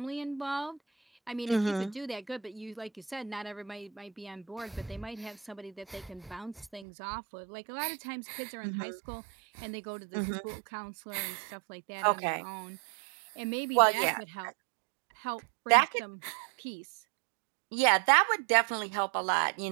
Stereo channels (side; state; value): left; drops out; at 6.9 s